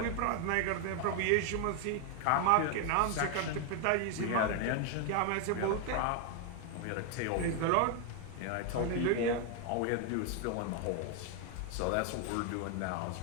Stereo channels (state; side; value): different; both; correlation 0.01